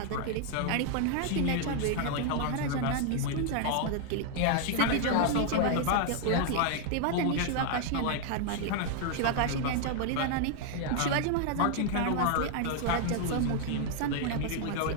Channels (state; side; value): different; both; correlation 0.00